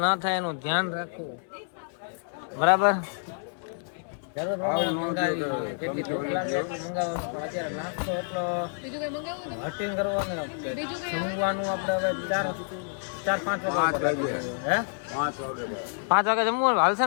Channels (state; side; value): silent; right; digital silence